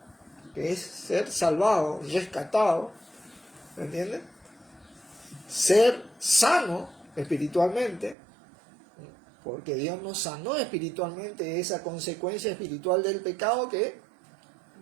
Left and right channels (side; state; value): left; drops out; at 8.2 s